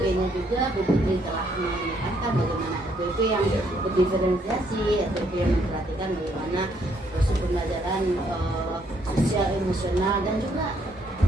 juga Bu Putri telah menekankan bagaimana RPP yang berdiferensiasi, RPP yang memperhatikan bagaimana proses pembelajaran sosial, emosional, dan juga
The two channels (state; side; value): normal; both; correlation 0.71